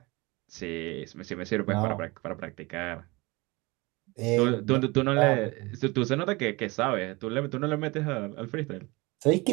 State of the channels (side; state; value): left; quieter; 24.3 dB